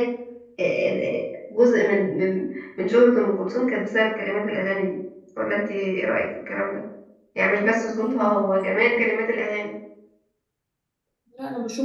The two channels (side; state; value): both; identical; correlation 1.00